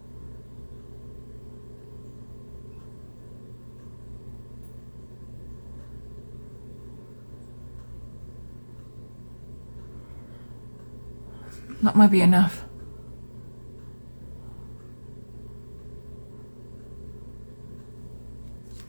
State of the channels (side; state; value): both; inverted; correlation -1.00